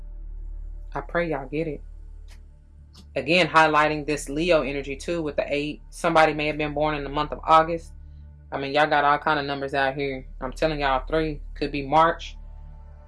I pray y'all get it. Again, highlighting this Leo energy too with the 8. Somebody may have been born in the month of August. I mean, y'all got all kind of numbers out here. I'm telling y'all, 3 could be March.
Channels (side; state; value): both; identical; correlation 1.00